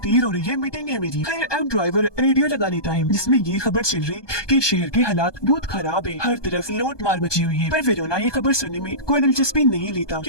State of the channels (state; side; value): late; right; 1.2 ms